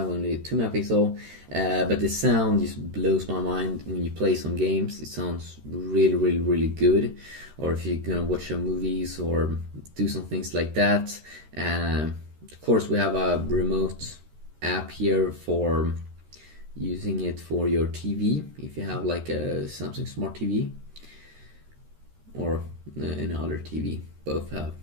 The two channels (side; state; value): left; late; 13 ms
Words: only 2 megapixel. But the sound just blows my mind when you play some games. It sounds really good. Or if you're gonna watch some movies or do some things like that. Of course, we have a remote app here for using it for your TV. If you have like a Samsung Smart TV or any other TV. Both have